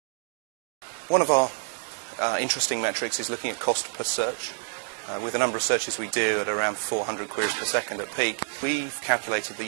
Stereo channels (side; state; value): left; silent; digital silence